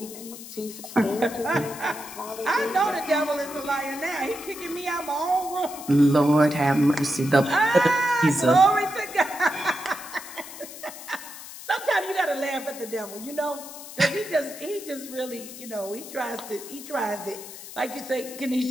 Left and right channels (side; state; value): left; noise; hiss, 13 dB below the sound